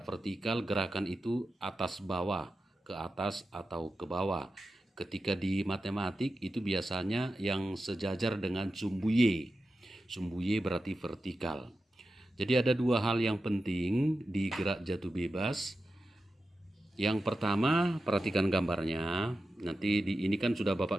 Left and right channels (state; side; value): normal; both; correlation 0.92